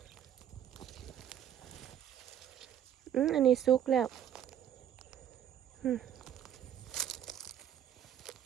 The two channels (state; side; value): quieter; left; 10.0 dB